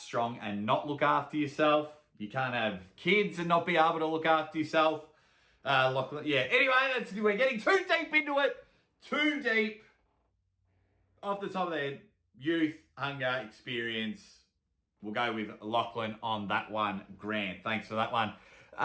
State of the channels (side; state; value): both; identical; correlation 1.00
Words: and not look after yourself. You can't have kids and not be able to look after yourself. Yeah, anyway, we're getting too deep into it. Too deep. Off the top of the head, youth, hunger, experience. We'll go with Lachlan on that one. Grant, thanks for that one.